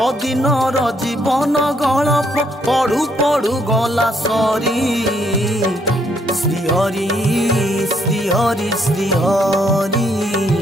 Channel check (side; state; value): both; normal; correlation 0.71